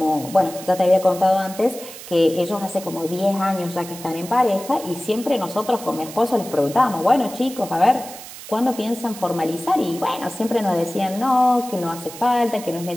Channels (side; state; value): right; noise; hiss, 14 dB below the sound